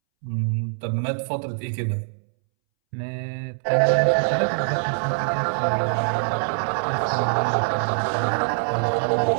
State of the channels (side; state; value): left; silent; 63 dB below the other